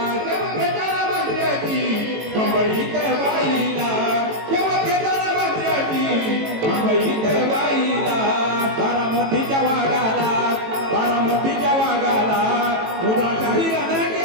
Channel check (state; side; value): late; left; 18 ms